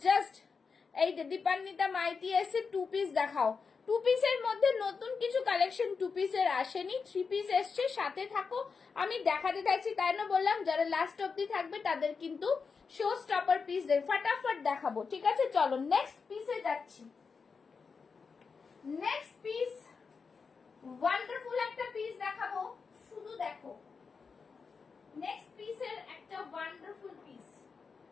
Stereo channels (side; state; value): right; quieter; 5.2 dB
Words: জাস্ট এই দীপান্বিতা মাইতি এসে 2 পিস দেখাও, 2 পিসের মধ্যে নতুন কিছু কালেকশন 2 পিসের আসেনি, 3 পিস এসছে, সাথে থাকো, আমি দেখাতে থাকছি, তাই না বললাম যারা লাস্ট অবধি থাকবে তাদের কিন্তু শো স্টপার পিস ফটাফট দেখাবো, ঠিক আছে। চলো নেক্সট পিসে যাচ্ছি, নেক্সট পিস ওয়ান্ডারফুল একটা পিস দেখাবো, শুধু দেখো, নেক্সট পিসের একটা ওয়ান্ডারফুল পিস,